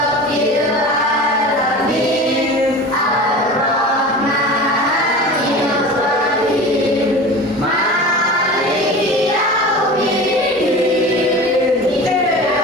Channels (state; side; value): normal; both; correlation 0.34